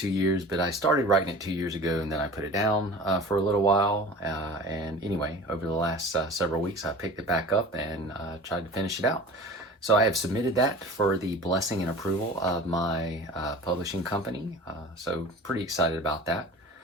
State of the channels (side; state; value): both; normal; correlation 0.39